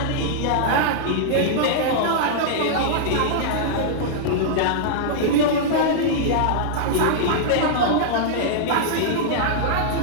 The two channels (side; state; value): both; different; correlation -0.01